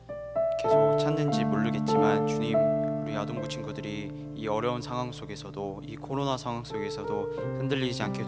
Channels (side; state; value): both; identical; correlation 1.00